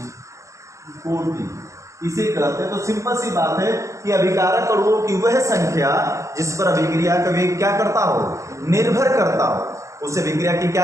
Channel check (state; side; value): late; left; 0.15 ms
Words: कोटि इसे कहते हैं। तो सिंपल सी बात है कि अभिकारक अणुओं की वह संख्या जिस पर अभिक्रिया का वेग क्या करता हो, निर्भर करता हो, उसे अभिक्रिया की क्या